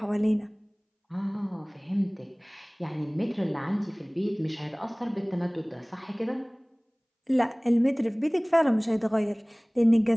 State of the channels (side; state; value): both; identical; correlation 1.00